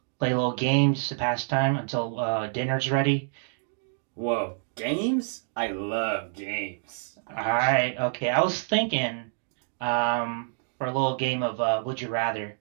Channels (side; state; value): left; silent; 60 dB below the other